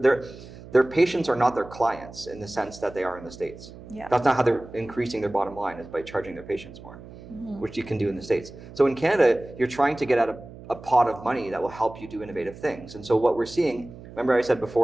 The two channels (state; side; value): noise; right; hum, 16 dB below the sound